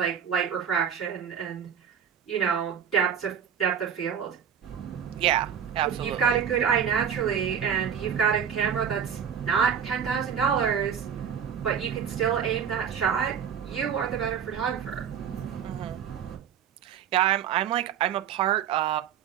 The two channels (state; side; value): quieter; left; 8.1 dB